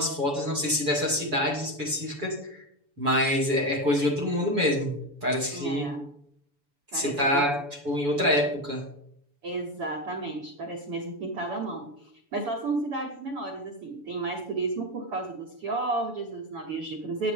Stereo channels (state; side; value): late; left; 7.0 ms